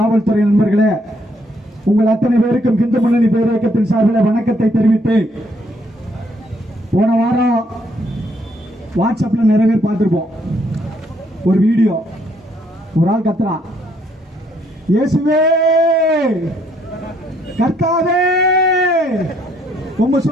நண்பர்களே, உங்கள் அத்தனை பேருக்கும் இந்து முன்னணி பேரியக்கத்தின் சார்பில் வணக்கத்தை தெரிவித்து, போன வாரம் வாட்ஸ்அப்ல நிறைய பேர் பார்த்திருப்போம். ஒரு வீடியோ, ஒரு ஆள் கத்துறான், இயேசுவே கர்த்தாவே உங்க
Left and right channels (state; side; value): normal; both; correlation 0.70